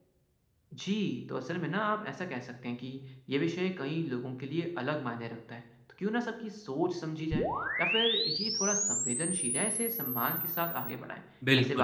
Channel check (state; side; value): identical; both; correlation 1.00